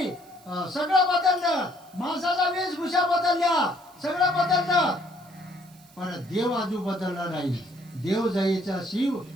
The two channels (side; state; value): right; noise; hiss, 26 dB below the sound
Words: सगळं बदललं. माणसाचा वेशभूषा बदलल्या, सगळं बदललं. पण देव अजून बदलला नाही. देव जायचा शिव,